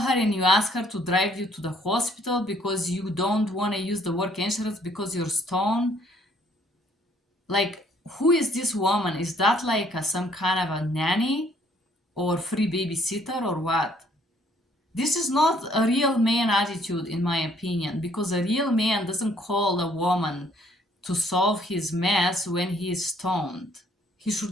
and you ask her to drive you to the hospital because you don't want to use the work insurance because you're stoned. Like, who is this woman? Is that like some kind of a nanny or free babysitter or what? This is not a real man attitude, in my opinion, because a real man doesn't call a woman to solve his mess when he is stoned. He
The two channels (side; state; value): both; normal; correlation 0.63